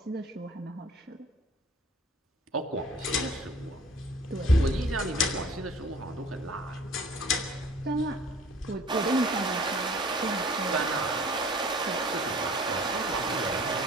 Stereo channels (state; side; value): normal; both; correlation 0.49